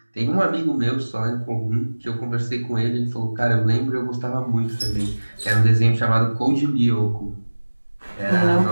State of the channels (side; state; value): both; inverted; correlation -1.00